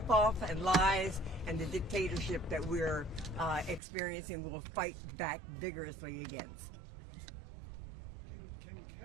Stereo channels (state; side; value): drops out; left; at 3.8 s